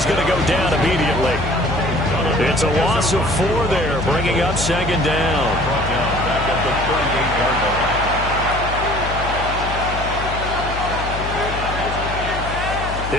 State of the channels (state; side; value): noise; left; hum, 6 dB below the sound